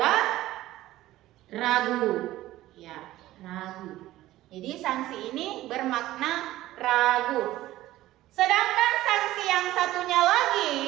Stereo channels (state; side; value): quieter; left; 15.6 dB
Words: ragu, ya, ragu. Jadi sanksi ini bermakna ragu. Sedangkan sanksi yang satunya lagi,